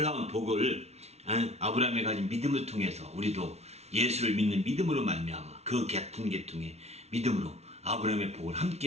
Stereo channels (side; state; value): left; late; 0.31 ms